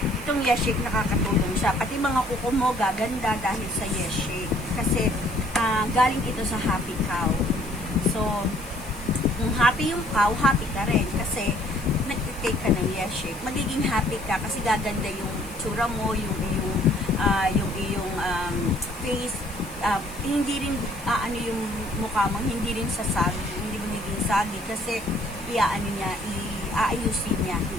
itong Yes Shake nakakatulong siya. Pati mga kuko mo gaganda dahil sa Yes Shake. Kasi galing ito sa happy cow. So, kung happy yung cow, happy ka rin. Kasi, nag-take ka ng Yes Shake. Magiging happy ka kasi gaganda yung tsura mo, yung iyong face. Hindi rin, yung mukha mo, hindi rin sasagi. Hindi mo naging sagi. Kasi, aayusin niya.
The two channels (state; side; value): noise; left; hiss, 18 dB below the sound